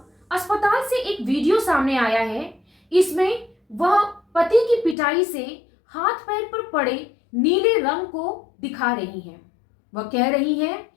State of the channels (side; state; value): right; drops out; at 5.0 s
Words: अस्पताल से एक वीडियो सामने आया है। इसमें वह पति की पिटाई से हाथ पैर पर पड़े नीले रंग को दिखा रही हैं। वह कह रही हैं,